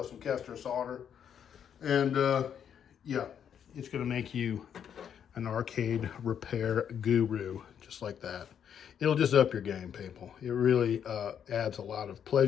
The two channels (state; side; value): quieter; right; 8.5 dB